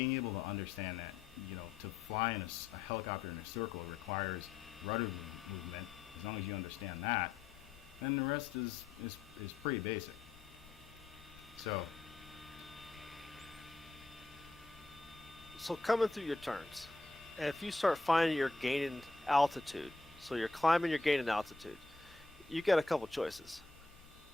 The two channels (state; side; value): quieter; right; 3.5 dB